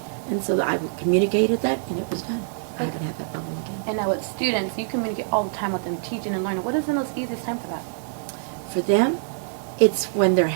And so I communicated that, and it was done. I haven't had that problem again. And now with students, you communicate all the time with them, teaching and learning. What is the most easiest time for that? For them, it's when they're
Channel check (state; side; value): silent; left; 62 dB below the other